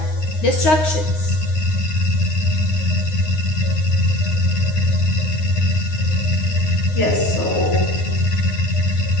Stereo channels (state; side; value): late; right; 9.6 ms